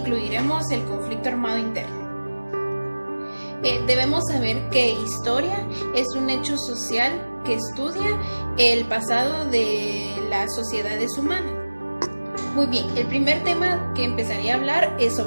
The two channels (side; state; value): both; inverted; correlation -1.00